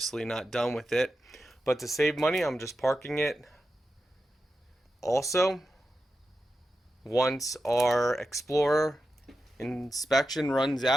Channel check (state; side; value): normal; both; correlation 0.90